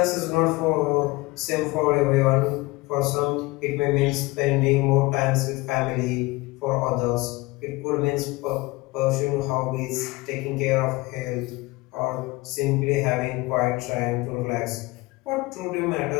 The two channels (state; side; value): quieter; right; 22.5 dB